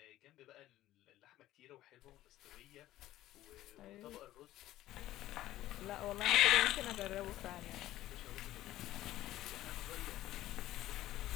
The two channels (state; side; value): quieter; right; 14.7 dB